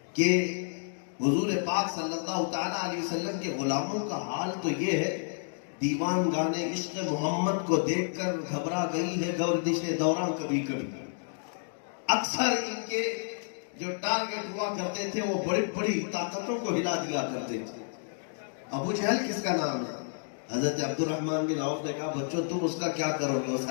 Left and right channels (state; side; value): silent; right; digital silence